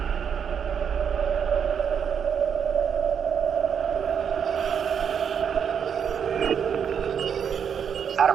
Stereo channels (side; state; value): left; quieter; 7.6 dB